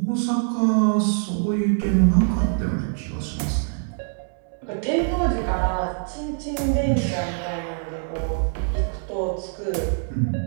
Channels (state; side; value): silent; left; digital silence